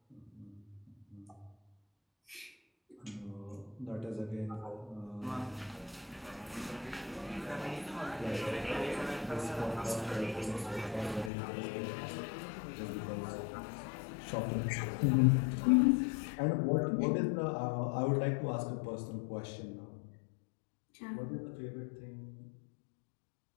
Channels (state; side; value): drops out; right; at 11.3 s